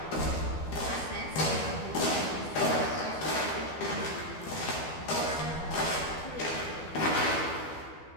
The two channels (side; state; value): right; late; 12 ms